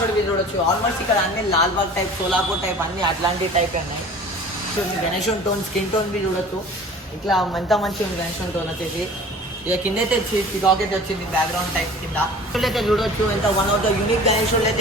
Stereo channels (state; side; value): normal; both; correlation 0.44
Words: మీరు చూడొచ్చు. ఆల్మోస్ట్ ఇక్కడ అన్ని లాల్బాగ్ టైప్, సోలాపూర్ టైప్ అన్ని అట్లాంటి టైప్ ఉన్నాయి. గణేశుడి టోన్ స్కిన్ టోన్ బి చూడొచ్చు. ఇట్లా ఎంత మంచిగా ఉంది గణేశుడి టోన్ వచ్చేసి. ఇక కింద అయితే పికాక్ అయితే వచ్చింది బ్యాక్గ్రౌండ్ టైప్ కింద. అయితే చూడొచ్చు ఎంత వన్ ఆఫ్ ద యూనిక్ గణేశుడు అయితే